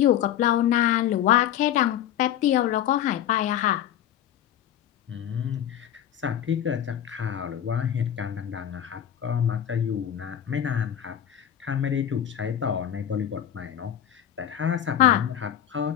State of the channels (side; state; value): right; quieter; 10.7 dB